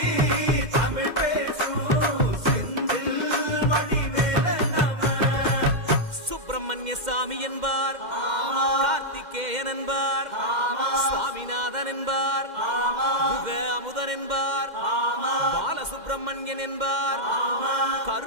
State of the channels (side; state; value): left; late; 2.1 ms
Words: தமிழ் பேசும் செந்தில் வடிவேலனவ சுப்பிரமணிய சாமி என்பார், கார்த்திகேயன் என்பார், சுவாமிநாதன் என்பார், முக அமுதன் என்பார், பாலசுப்பிரமணியன் என்பார்,